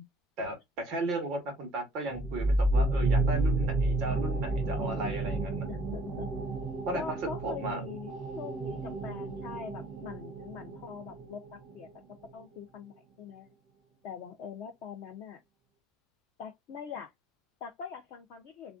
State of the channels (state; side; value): normal; both; correlation 0.59